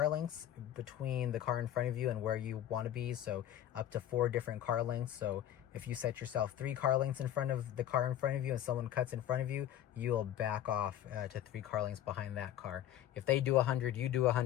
lengths between the car in front of you and where you want to be. So up to 4 different car lengths. So if you set yourself 3 car lengths in front of the car in front of you and someone cuts in front of you, you'll back off to 3 car lengths behind that car. If they do 100, you do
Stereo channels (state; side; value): quieter; right; 11.5 dB